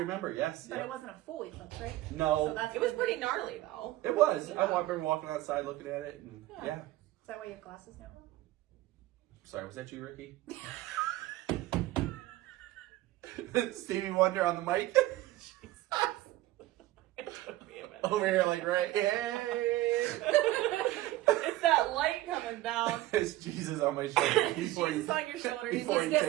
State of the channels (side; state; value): left; quieter; 16.4 dB